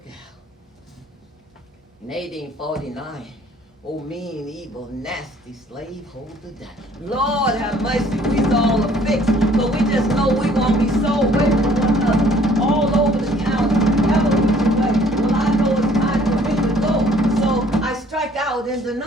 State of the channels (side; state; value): both; normal; correlation 0.58